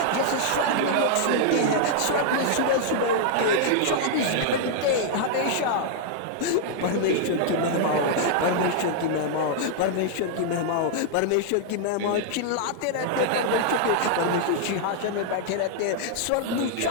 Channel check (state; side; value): different; both; correlation -0.01